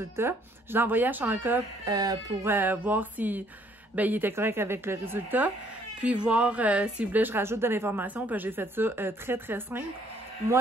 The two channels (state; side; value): normal; both; correlation 0.64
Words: Je l'ai envoyé à Chanka pour voir si il était correct avec le résultat. Puis voir s'il voulait que je rajoute de l'information. Puis j'ai fait ça très, très simple.